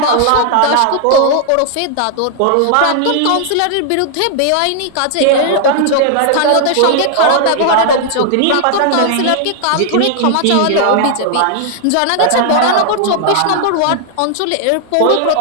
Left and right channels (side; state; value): both; different; correlation 0.00